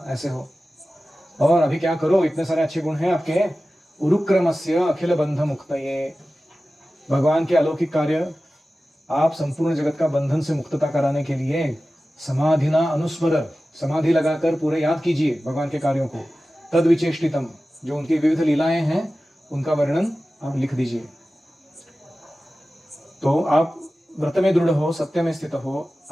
ऐसे हो। और अभी क्या करो, इतने सारे अच्छे गुण हैं आपके। उरुक्रमस्य अखिल बंध मुक्तये, भगवान के अलौकिक कार्य, आप संपूर्ण जगत का बंधन से मुक्तता कराने के लिए समाधिना अनुस्मर, समाधि लगाकर पूरे याद कीजिए भगवान के कार्यों को। तद विचेष्टितम, जो उनकी विविध लीलाएं हैं उनका वर्णन आप लिख दीजिए। तो आप व्रत में दृढ़ हो, सत्य में स्थित हो,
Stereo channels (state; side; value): normal; both; correlation 0.95